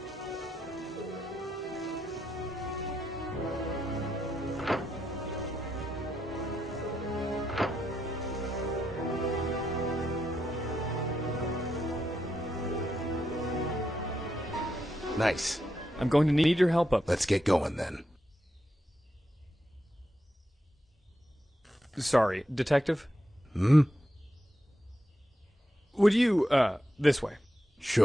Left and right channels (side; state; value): both; normal; correlation 0.84